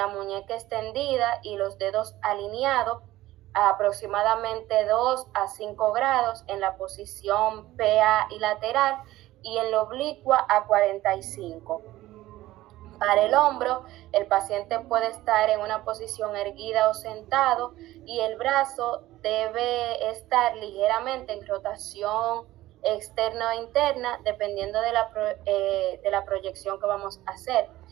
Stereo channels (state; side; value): quieter; left; 16.2 dB